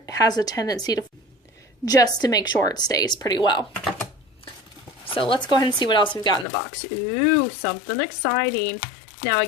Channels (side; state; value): right; drops out; at 6.5 s